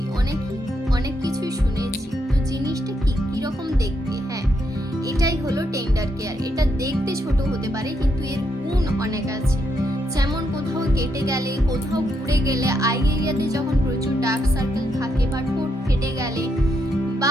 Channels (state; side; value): normal; both; correlation 0.79